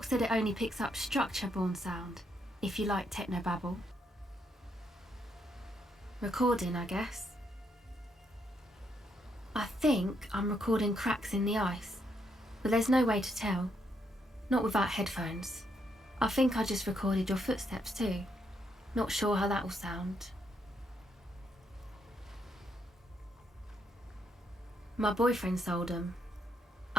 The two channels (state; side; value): normal; both; correlation 0.76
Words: said it only picks up structure-borne sound, if you like technobabble. Recording, I guess. I think I'm recording cracks in the ice, but there's no way to tell. Not without headphones. I think I just recorded your footsteps too. Not sure how that will sound. My boyfriend sold them.